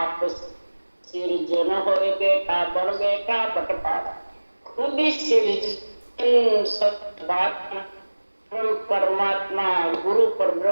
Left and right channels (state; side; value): inverted; both; correlation -1.00